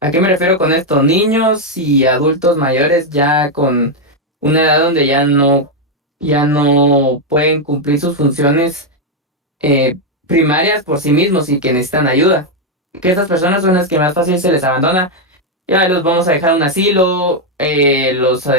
¿A qué me refiero con esto? Niños y adultos mayores ya con una edad donde ya no pueden cumplir sus funciones primarias por sí mismos y que necesitan ayuda. Que estas personas son las que más fácil se les abandona ya los vamos a dejar a un asilo, los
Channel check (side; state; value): both; normal; correlation 0.02